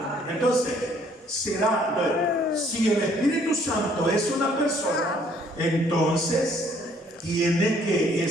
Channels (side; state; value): both; normal; correlation 0.62